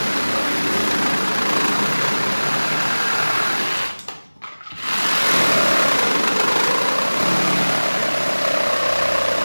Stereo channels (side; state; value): both; inverted; correlation -1.00